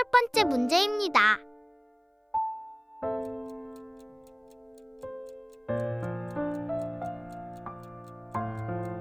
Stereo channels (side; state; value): both; identical; correlation 1.00